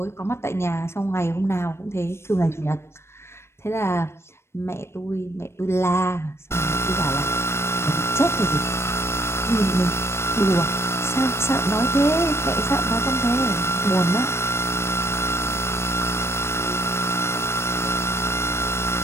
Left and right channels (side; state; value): right; late; 0.12 ms